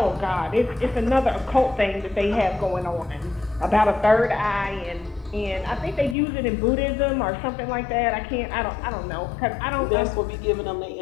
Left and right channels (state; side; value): drops out; right; at 6.2 s